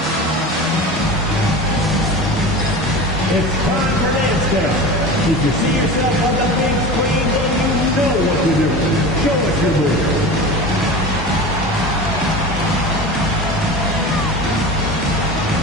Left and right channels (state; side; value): normal; both; correlation 0.31